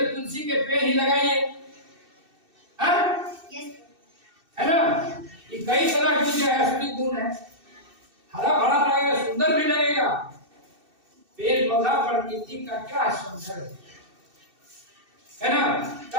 तुलसी के पेड़ ही लगाइए, है ना। ये कई तरह की जो है असली गुण है, हरा भरा लगेगा, सुंदर भी लगेगा। पेड़ पौधा प्रकृति का क्या सौंदर्य है ना।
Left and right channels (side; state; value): left; late; 2.6 ms